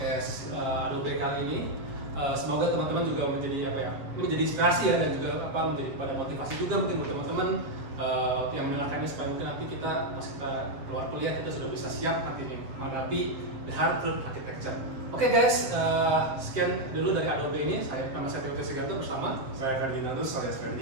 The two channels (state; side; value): late; left; 7.2 ms